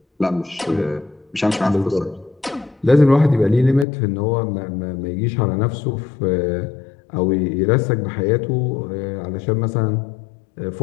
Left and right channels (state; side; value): drops out; right; at 3.9 s